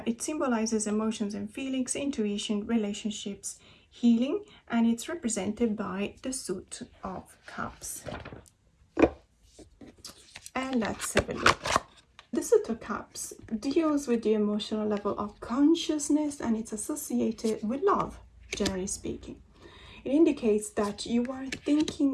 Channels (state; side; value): identical; both; correlation 1.00